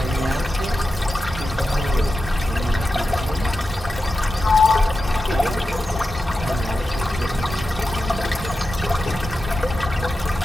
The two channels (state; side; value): normal; both; correlation 0.91